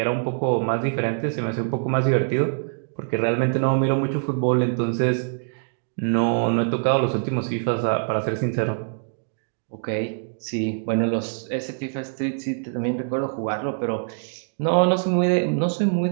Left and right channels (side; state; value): left; silent; digital silence